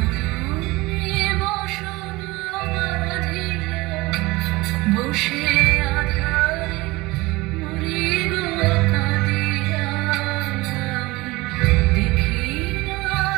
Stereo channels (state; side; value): quieter; left; 21.3 dB